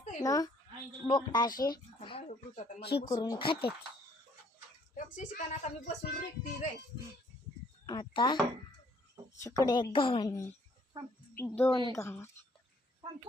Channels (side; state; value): both; normal; correlation 0.63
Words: बोकटा असे ही करून खाते. आता इकडे एक गव्हाणे, दोन गव्हाणे.